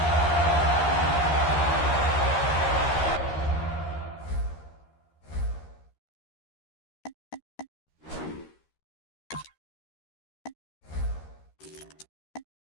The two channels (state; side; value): late; right; 13 ms